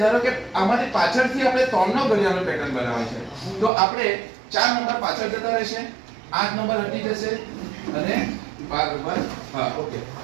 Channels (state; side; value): drops out; left; at 3.7 s